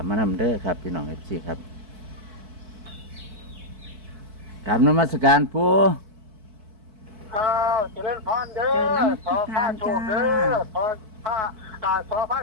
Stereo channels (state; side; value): late; left; 4.6 ms